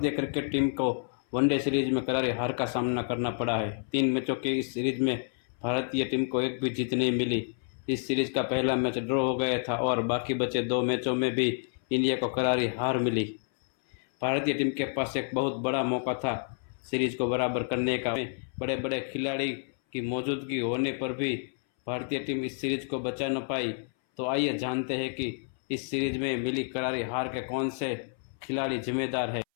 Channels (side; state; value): right; silent; 58 dB below the other